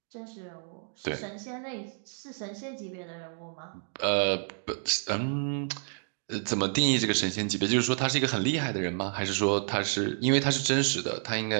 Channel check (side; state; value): left; silent; 58 dB below the other